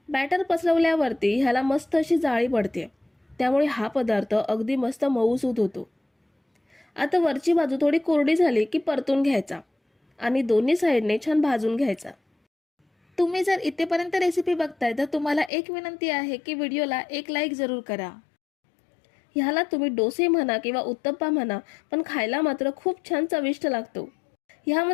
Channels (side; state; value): right; drops out; at 15.5 s